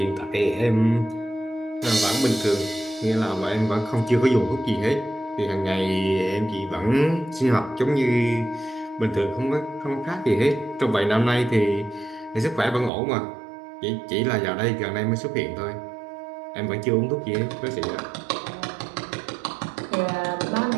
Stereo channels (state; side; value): drops out; left; at 12.9 s